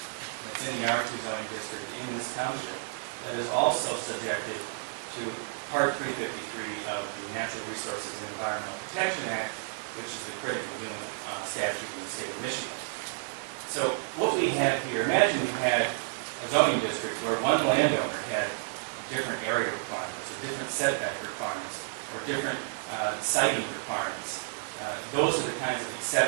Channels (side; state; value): left; silent; digital silence